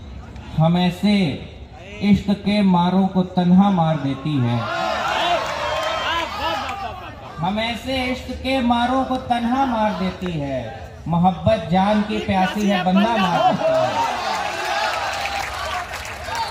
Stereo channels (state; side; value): identical; both; correlation 1.00